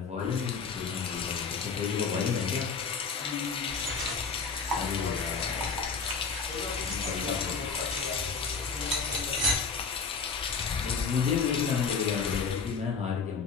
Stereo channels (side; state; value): right; quieter; 5.2 dB